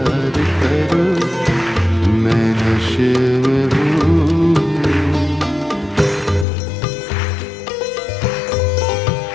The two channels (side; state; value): right; drops out; at 6.5 s